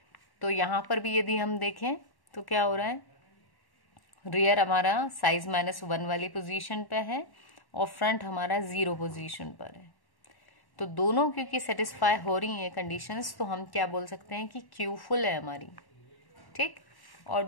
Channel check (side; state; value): right; late; 1.1 ms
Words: तो यहाँ पर भी यदि हम देखें तो क्या हो रहा है, रियर हमारा साइज -1 वाली पोजीशन पे है और फ्रंट हमारा 0 पोजीशन पर है। तो दोनों क्योंकि सेटिस्फाई हो रही हैं कंडीशंस, तो हम क्या बोल सकते हैं कि क्यू फुल है हमारी, ठीक। और